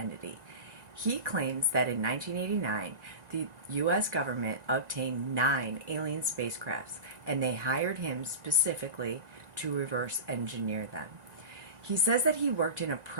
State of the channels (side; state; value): left; late; 1.9 ms